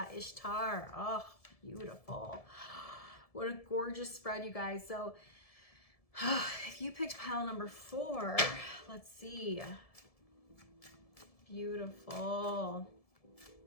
Ishtar. Oh, beautiful. What a gorgeous spread, you guys. So if you picked pile number 4, let's see. Beautiful.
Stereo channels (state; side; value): late; right; 1.7 ms